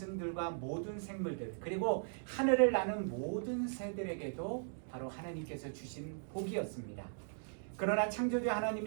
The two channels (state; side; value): silent; left; digital silence